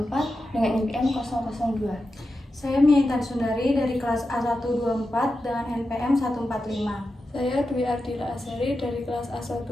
dengan NPM 002. Saya Miaitan Sundari dari kelas A124 dengan NPM 145. Saya Dwi Ardila Azhari dari kelas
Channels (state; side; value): normal; both; correlation 0.90